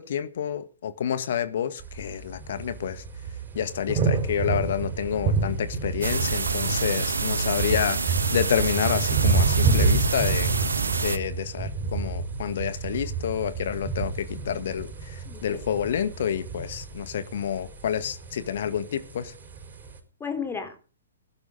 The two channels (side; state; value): both; inverted; correlation -0.39